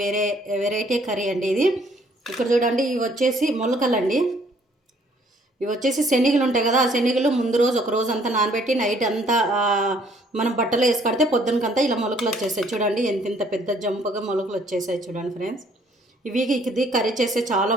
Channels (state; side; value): normal; both; correlation 0.62